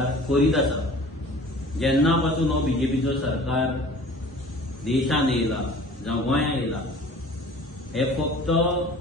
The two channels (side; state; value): both; normal; correlation 0.46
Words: करीत आसा। जेन्ना पासून हो बीजेपीचो सरकार देशान येयला जावं गोंयां येयला हे फक्त